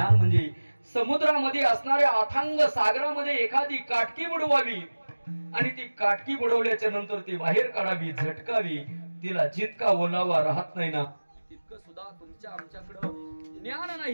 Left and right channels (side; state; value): both; inverted; correlation -1.00